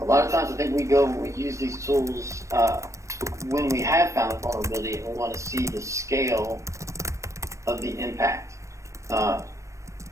a lot of times I think we use these tools when we have found a vulnerability and we want to see the scale of the impact. I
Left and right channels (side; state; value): left; late; 0.15 ms